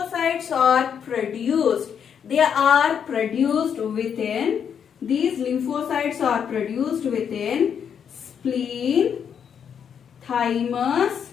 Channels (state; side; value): quieter; right; 7.8 dB